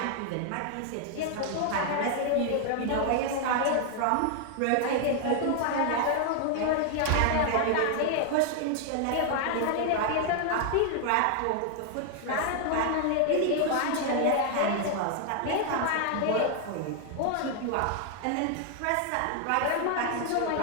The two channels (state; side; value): different; both; correlation 0.00